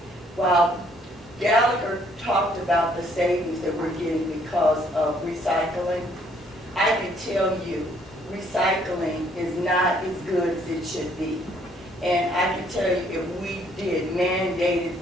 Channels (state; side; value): normal; both; correlation 0.65